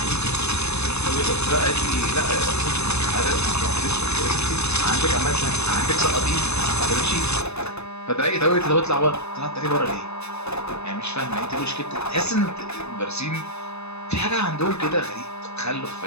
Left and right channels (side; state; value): right; late; 0.80 ms